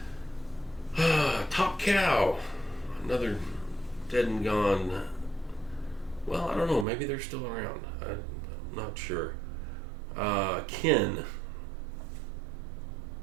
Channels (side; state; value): left; drops out; at 6.9 s